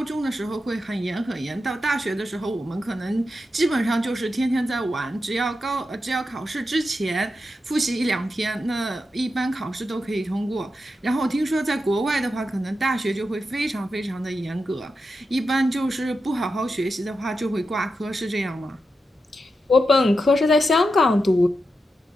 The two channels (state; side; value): normal; both; correlation 0.88